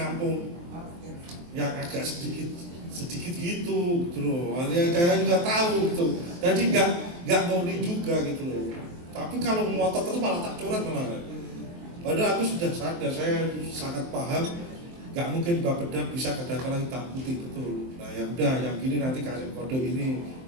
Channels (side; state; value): left; late; 23 ms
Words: yang agak sedikit gitu loh. Saya juga tahu gitu. Jadi nggak murni juga gitu loh. Tapi kalau ngotot terus malah tak coret malah. Padahal aku sudah sadar, saya sangat paham, nggak mungkin Bapeda bisa kadang-kadang hitam putih betul. Nah ya udah, yang gini nanti kasih kode ini